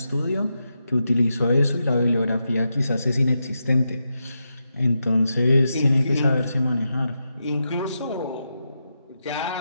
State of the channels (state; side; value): inverted; both; correlation -0.86